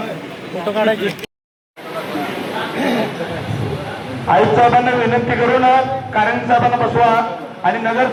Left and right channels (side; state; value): both; identical; correlation 1.00